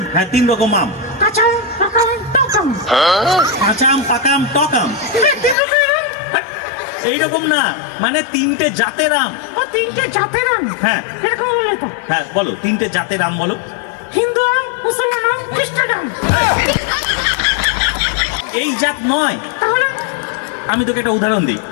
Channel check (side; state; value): right; drops out; at 5.6 s